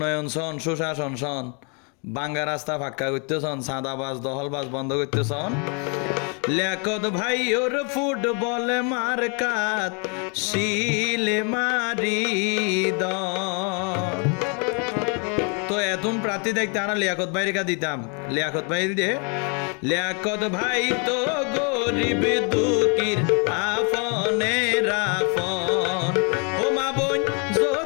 সন সুশাসন সন বাঙ্গা রাস্তা ফাঁকা করতেছন, সাদাবাজ দহলবাজ বন্ধ করতেছন, লিয়াকত ভাই ওর ফুটবল মার্কাত শিলে মারি দ। তো এতন প্রার্থী দেখতে আমরা লিয়াকত ভাই রেখা দিতাম, লিয়াকত ভাই দিয়ে লিয়াকত ভাই তো গরিব দুঃখীর আপনের আপন। ও মা বোন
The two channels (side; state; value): right; quieter; 36.5 dB